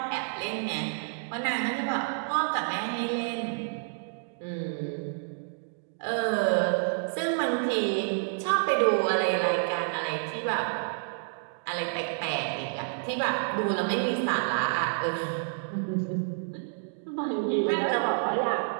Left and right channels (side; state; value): left; silent; digital silence